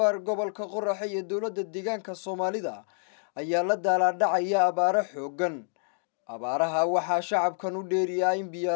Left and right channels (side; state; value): right; silent; digital silence